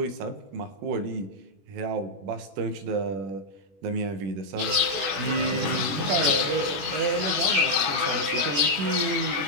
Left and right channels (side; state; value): left; late; 21 ms